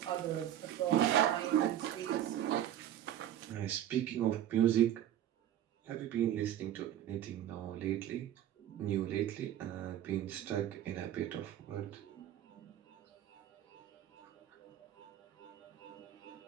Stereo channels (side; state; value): left; quieter; 11.6 dB